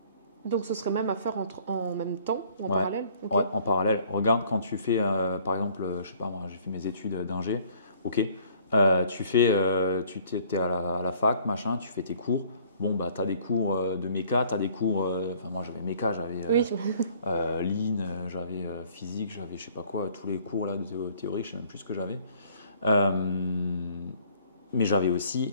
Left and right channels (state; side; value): inverted; both; correlation -0.57